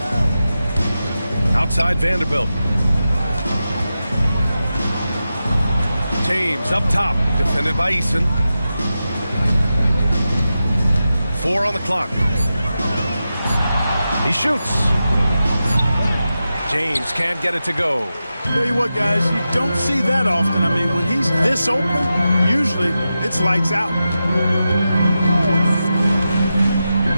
Outside Vanderbilt. James up top, defended by Eason. 4 on the clock. He shoots. James can't get it to go. Tell you what, guys, you don't see that often. I mean, when he's this open, usually it's lights out.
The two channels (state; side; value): inverted; both; correlation -0.91